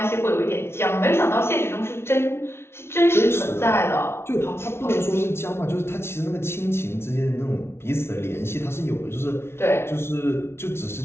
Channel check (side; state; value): right; late; 0.12 ms